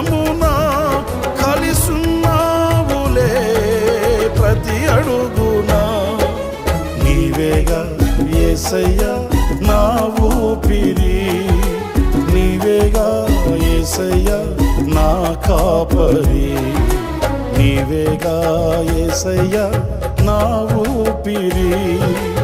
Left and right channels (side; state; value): both; identical; correlation 1.00